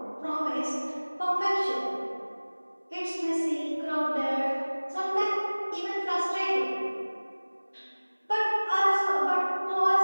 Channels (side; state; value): both; inverted; correlation -1.00